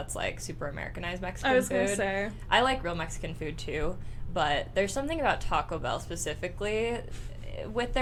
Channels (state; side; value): identical; both; correlation 1.00